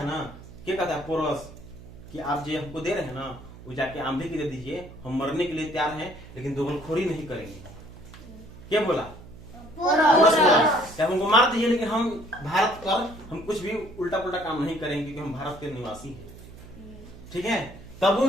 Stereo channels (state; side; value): noise; right; hum, 17 dB below the sound